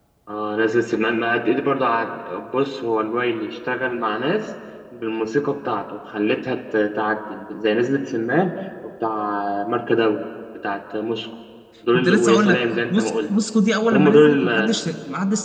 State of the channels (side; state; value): both; identical; correlation 1.00